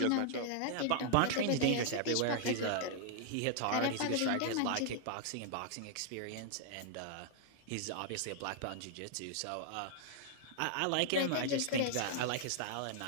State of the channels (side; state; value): both; different; correlation -0.01